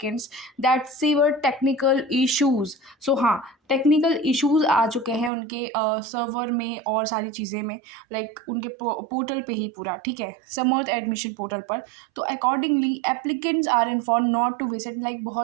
that severe technical issues. So हाँ, टेक्निकल इश्यूज आ चुके हैं उनके सर्वर में और सारी चीज़ें में, लाइक उनके पोर्टल पे ही पूरा, ठीक है, समर्थ एडमिशन पोर्टल पर। तो accordingly applicants are inform not to visit, like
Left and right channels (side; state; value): left; drops out; at 5.3 s